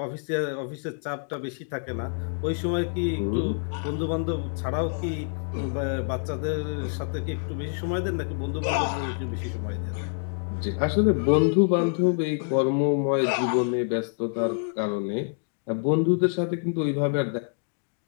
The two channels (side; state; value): right; silent; digital silence